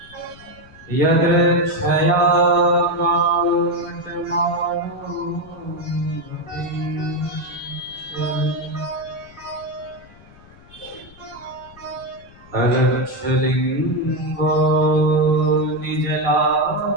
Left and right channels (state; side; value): noise; left; rumble, 23 dB below the sound